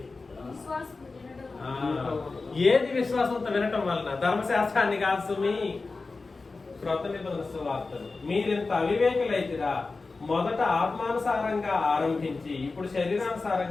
ఏది విశ్వాసంతో వినటం వలన? ధర్మశాస్త్రాన్ని కాదు సుమి, క్రొత్త నిబంధన సువార్తలు. మీరింత అవివేకులైతిరా, మొదట ఆత్మానుసారంగా ఆరంభించి ఇప్పుడు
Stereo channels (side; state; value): right; quieter; 3.9 dB